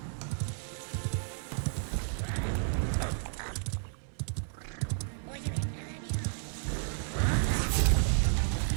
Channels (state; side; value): silent; left; 56 dB below the other